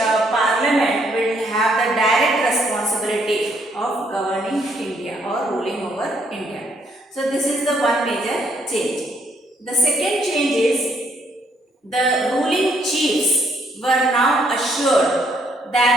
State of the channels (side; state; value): both; normal; correlation 0.70